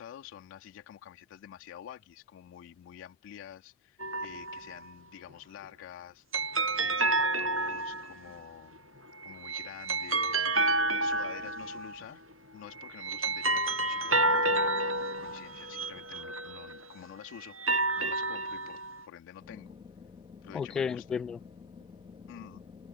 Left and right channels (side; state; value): both; normal; correlation -0.12